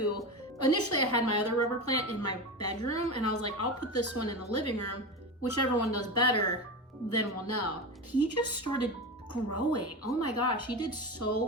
Initially, I had my other rubber plant in my bedroom, and I was like, I'll put this one in the living room. Whichever one does better, then we'll know. He just started growing. Oh my gosh, he did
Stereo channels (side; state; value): both; normal; correlation 0.23